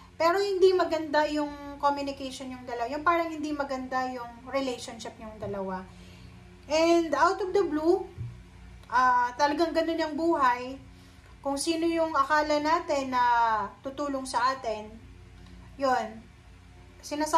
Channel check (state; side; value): identical; both; correlation 1.00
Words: pero hindi maganda yung communication yung dalawa. Yung parang hindi maganda yung relationship yung dalawa. And out of the blue, talagang ganun yung buhay. Kung sino yung akala natin na tutulong sa atin, yun.